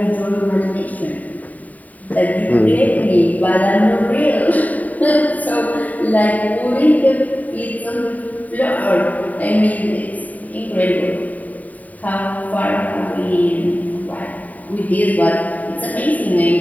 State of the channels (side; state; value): right; late; 0.073 ms